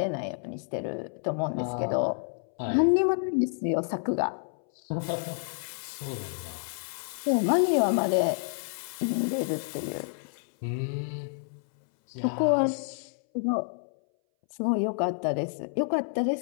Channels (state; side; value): silent; right; 59 dB below the other